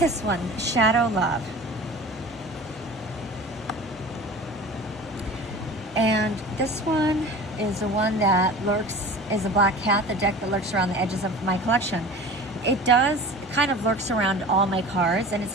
one, Shadow Love. And this one is the one that is a Black Cat, the deck that lurks around the edges of my collection. It does kind of lurks around all my cards, and it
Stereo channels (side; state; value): both; normal; correlation 0.38